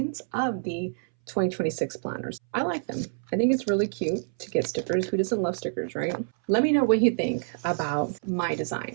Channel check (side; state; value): left; silent; 60 dB below the other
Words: of the 2026 planners. I like them. I think it's really cute to get stickers. Who doesn't love stickers, right? Let me know what you think about my